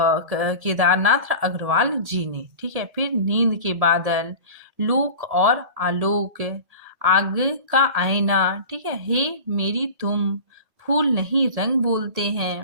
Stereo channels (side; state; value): left; late; 1.8 ms